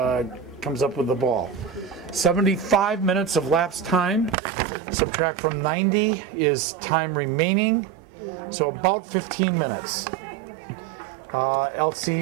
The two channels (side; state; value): left; drops out; at 4.4 s